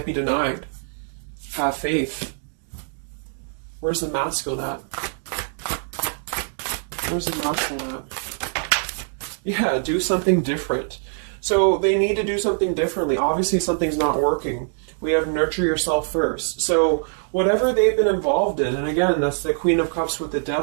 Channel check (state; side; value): silent; left; digital silence